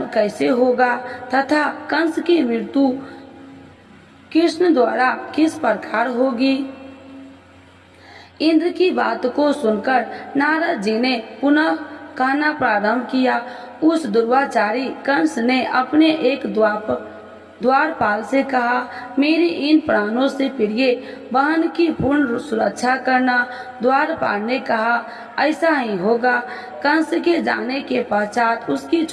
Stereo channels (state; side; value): identical; both; correlation 1.00